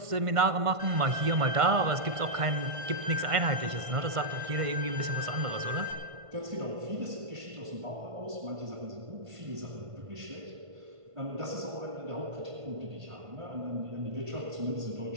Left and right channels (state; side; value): late; left; 1.5 ms